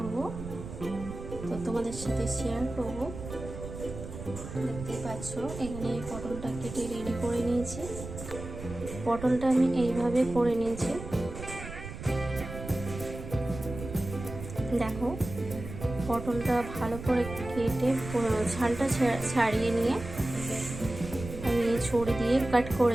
তো তোমাদের সাথে শেয়ার করব। দেখতে পাচ্ছ এখানে পটলটা কেটে রেডি করে নিয়েছি। পটলটা আমি এইভাবে করে নিয়েছি, দেখো। পটলটা ভালো করে কেটে ছালটা ছাড়িয়ে নিয়ে আমি ছুরি দিয়ে কাট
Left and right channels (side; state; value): right; noise; rumble, 10 dB below the sound